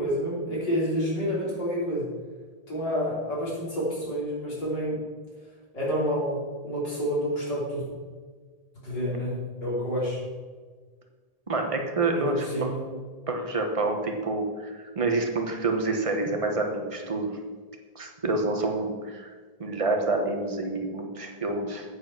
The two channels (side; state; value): right; late; 1.8 ms